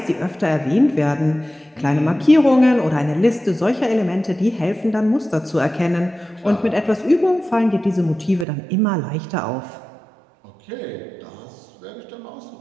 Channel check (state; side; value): drops out; left; at 8.5 s